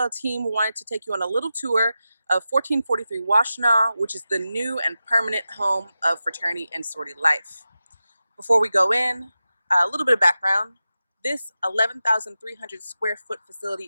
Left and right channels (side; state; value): both; inverted; correlation -0.92